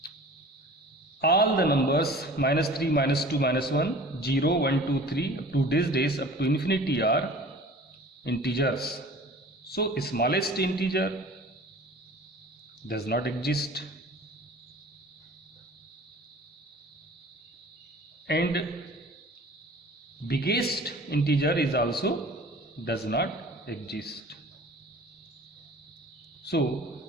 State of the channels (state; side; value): normal; both; correlation 0.44